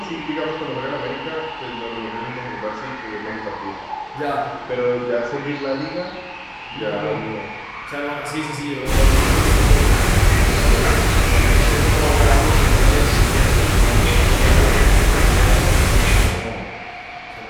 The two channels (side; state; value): both; identical; correlation 1.00